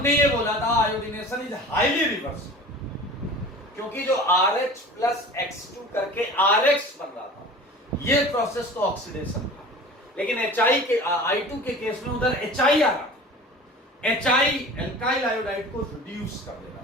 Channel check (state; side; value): normal; both; correlation 0.40